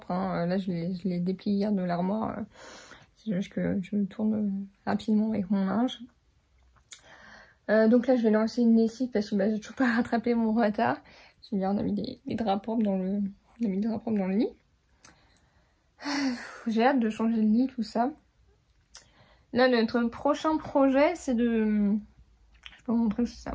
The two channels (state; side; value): identical; both; correlation 1.00